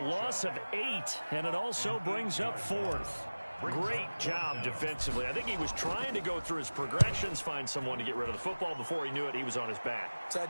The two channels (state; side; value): inverted; both; correlation -1.00